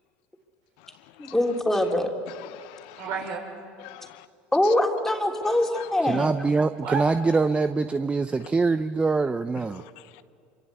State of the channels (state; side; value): normal; both; correlation 0.86